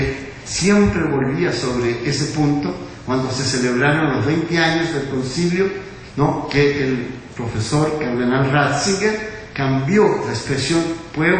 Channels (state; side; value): identical; both; correlation 1.00